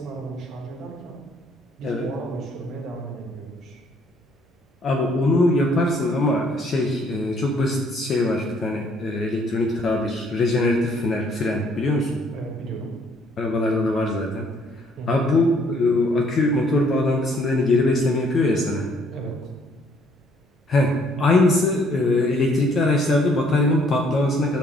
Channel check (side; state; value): both; normal; correlation 0.64